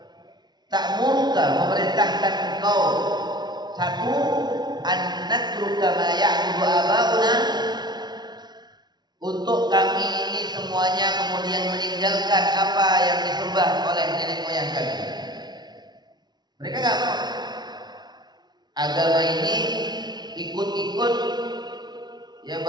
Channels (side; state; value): left; late; 0.20 ms